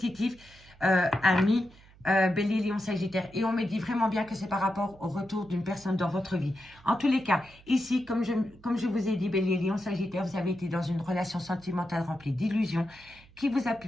amis, Bélier, Lion, Sagittaire. Et on me dit vraiment bien que c'est par rapport au retour d'une personne dans votre vie. En tous les cas, ici, comme je vous ai dit, Bélier, Lion, Sagittaire, vous avez été dans une relation sentimentale remplie d'illusions qui vous a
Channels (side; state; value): right; noise; hum, 25 dB below the sound